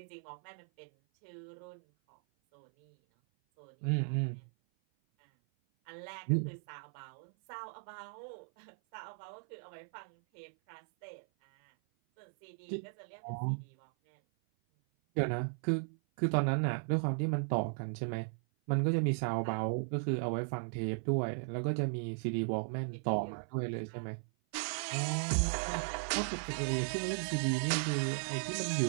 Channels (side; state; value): left; silent; 53 dB below the other